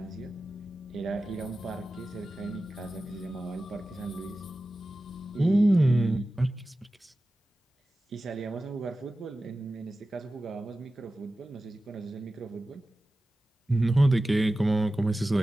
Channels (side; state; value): both; normal; correlation 0.95